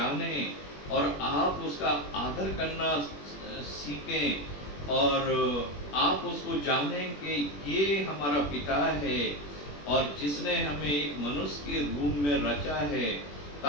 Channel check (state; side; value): late; right; 21 ms